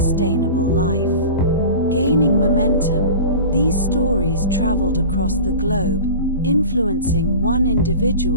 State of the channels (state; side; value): inverted; both; correlation -0.35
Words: life. Gaining momentum, these stories traveled across the globe, influencing one